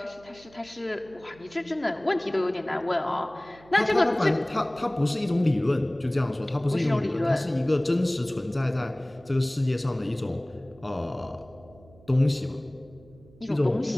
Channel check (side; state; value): right; noise; hum, 25 dB below the sound